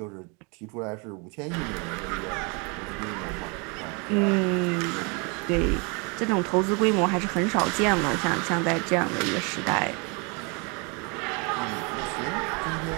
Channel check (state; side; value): quieter; left; 31.9 dB